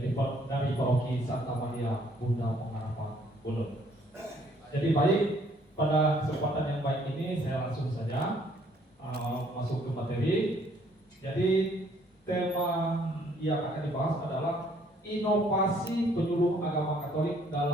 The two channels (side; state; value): both; normal; correlation 0.63